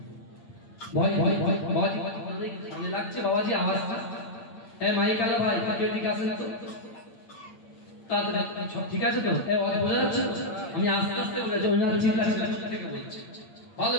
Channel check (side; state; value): right; late; 8.8 ms